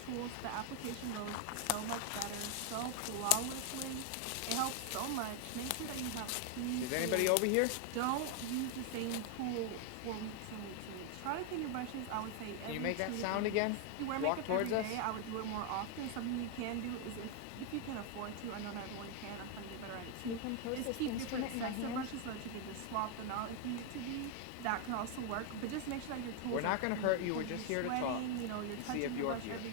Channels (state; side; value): different; both; correlation 0.00